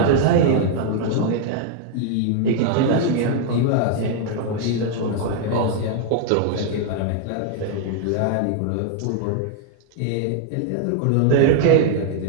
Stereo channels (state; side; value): different; both; correlation 0.00